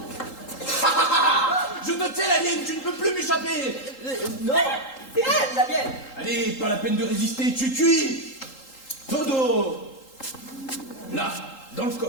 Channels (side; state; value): right; late; 3.8 ms